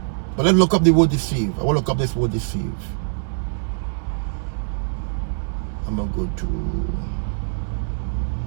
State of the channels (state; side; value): silent; left; digital silence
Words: But let's look up the word deceive. I will look up this word deceive. I'm going to go to...